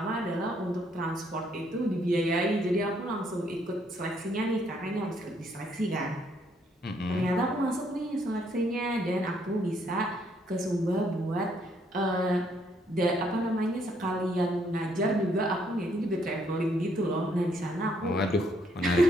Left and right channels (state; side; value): normal; both; correlation 0.70